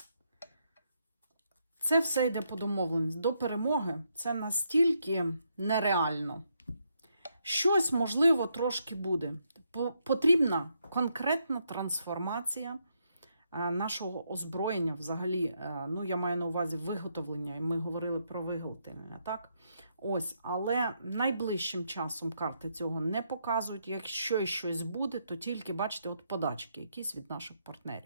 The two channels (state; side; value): inverted; both; correlation -0.78